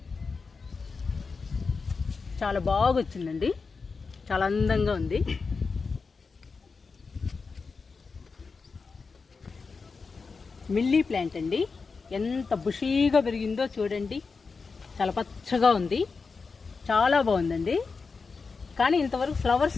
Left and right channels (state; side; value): quieter; right; 4.7 dB